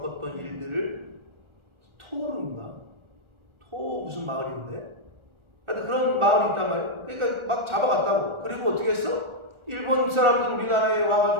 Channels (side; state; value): left; late; 1.3 ms